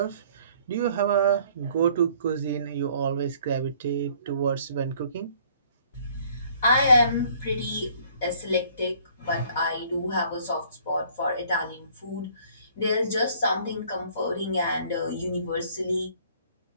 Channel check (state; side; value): inverted; both; correlation -0.58